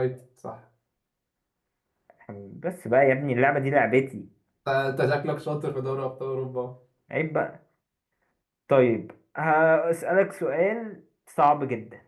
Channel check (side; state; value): both; identical; correlation 1.00